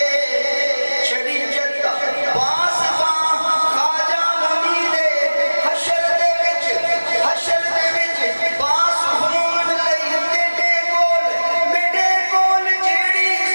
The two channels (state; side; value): inverted; both; correlation -1.00